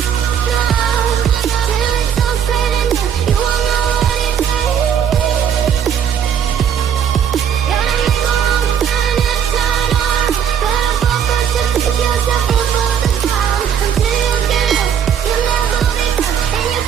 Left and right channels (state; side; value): quieter; left; 8.5 dB